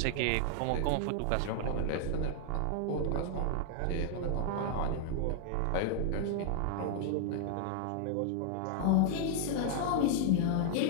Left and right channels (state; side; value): different; both; correlation -0.01